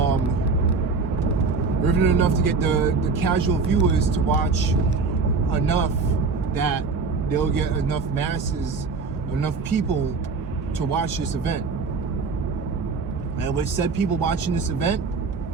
Riveting enough to get the casual viewers to watch enough that they'll get enough masses, enough people to watch this event. And with said people watching this event,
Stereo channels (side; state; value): left; quieter; 4.4 dB